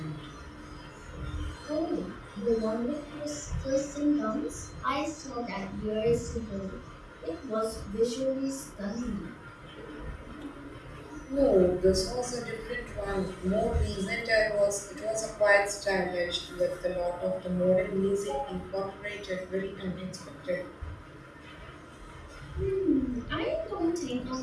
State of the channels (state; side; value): identical; both; correlation 1.00